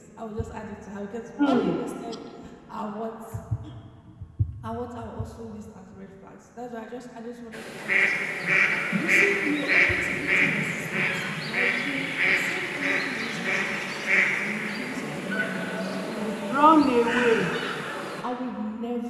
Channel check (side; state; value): both; identical; correlation 1.00